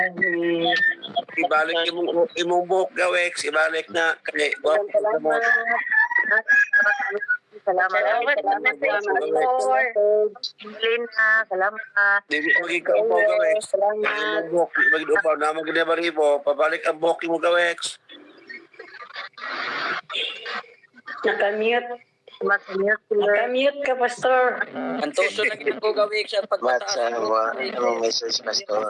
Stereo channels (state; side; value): identical; both; correlation 1.00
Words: Ibalik imong buhok Gawek. Ibalik na. Kaya, Salamat. Pastor. Lina, salamat. Hindi magiging mo Gawek. Salamat. Imong buhok. Mag-upaw na mag-debaribo. Pabalik ang buhok mo Gawek. Nakamute. Nakamute ka, Pastor. Ang tuso na ginagawa gawik sa pagpataas. message